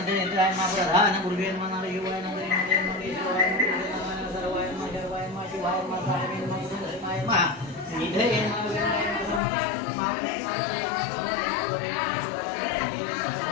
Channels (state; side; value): drops out; right; at 9.4 s